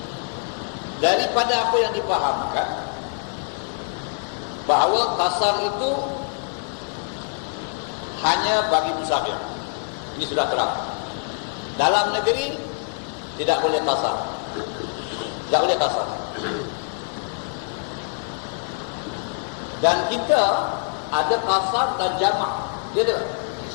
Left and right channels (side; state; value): right; silent; 59 dB below the other